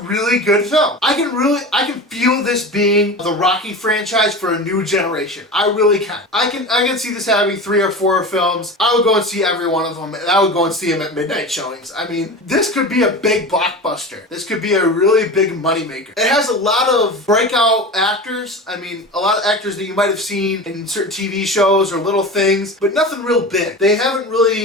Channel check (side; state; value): both; normal; correlation 0.30